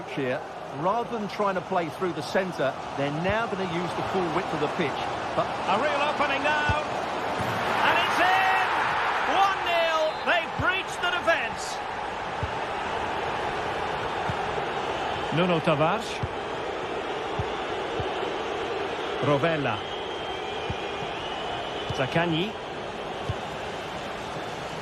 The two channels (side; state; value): both; identical; correlation 1.00